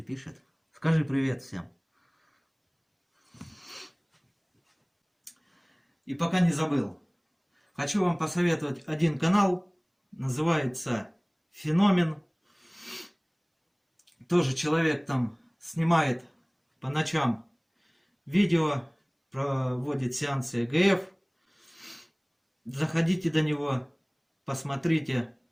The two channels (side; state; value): both; identical; correlation 1.00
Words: пишет. Скажи привет всем. И пока не забыл, хочу вам посоветовать один канал, называется Феномен. Тоже человек там снимает по ночам видео, проводит сеансы ЭГФ. Заходите до него, посмотрите,